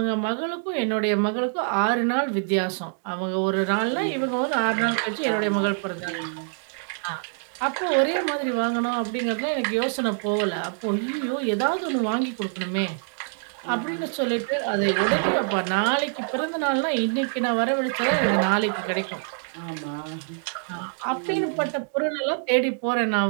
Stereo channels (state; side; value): silent; left; 62 dB below the other